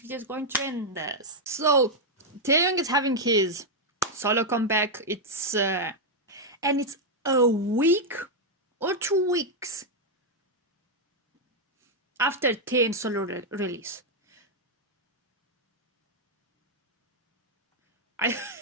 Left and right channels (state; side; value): normal; both; correlation -0.01